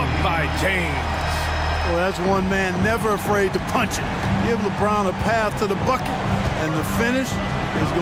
by James. Well, that's one man never afraid to punch it. Give LeBron a path to the bucket, and the finish is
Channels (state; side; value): identical; both; correlation 1.00